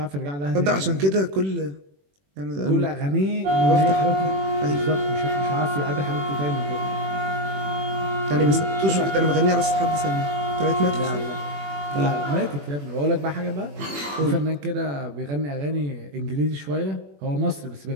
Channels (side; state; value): left; late; 21 ms